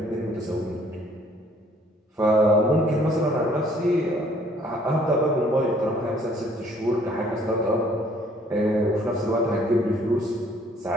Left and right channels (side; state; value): both; normal; correlation 0.61